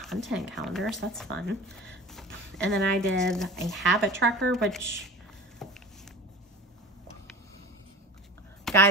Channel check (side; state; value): both; normal; correlation 0.38